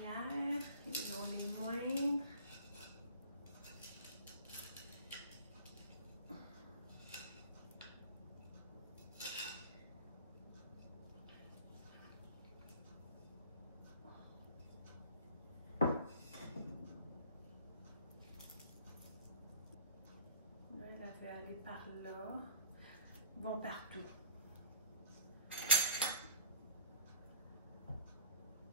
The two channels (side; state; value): both; inverted; correlation -0.44